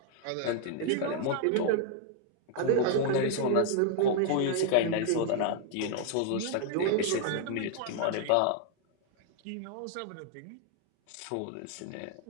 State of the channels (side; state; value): both; different; correlation 0.00